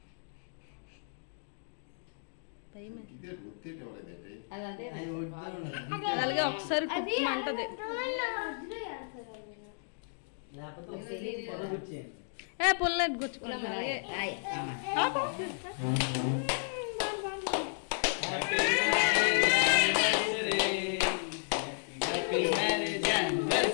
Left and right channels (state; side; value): silent; right; digital silence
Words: అలాగే ఒకసారి కుట్టమంటది. ఏ పుల్లెట్ గుచ్చుకున్నా